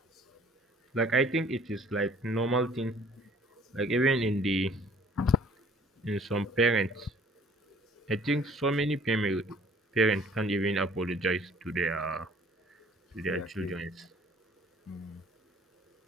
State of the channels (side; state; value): both; normal; correlation 0.56